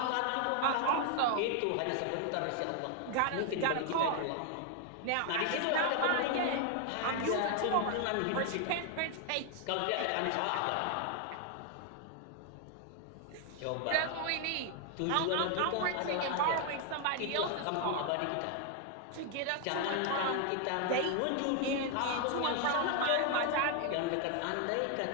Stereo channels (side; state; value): both; different; correlation 0.00